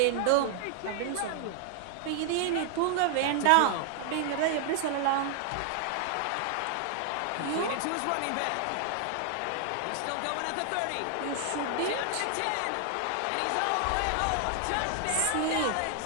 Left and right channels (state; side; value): different; both; correlation 0.00